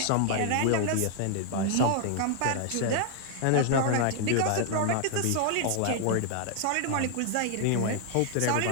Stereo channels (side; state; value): both; different; correlation 0.00